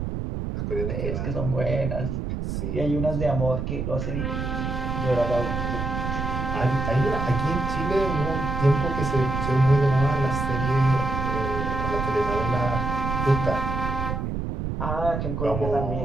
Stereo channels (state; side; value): noise; right; rumble, 3 dB below the sound